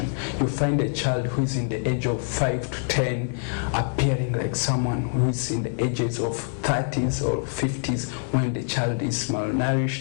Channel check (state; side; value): silent; right; digital silence